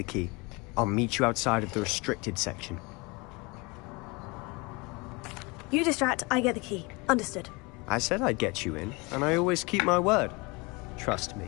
key. I'll meet you outside of the restricted section. You distract, I get the key. Understood. I said I'd get you in, and I always keep my word. Trust me.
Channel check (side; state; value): right; quieter; 26.7 dB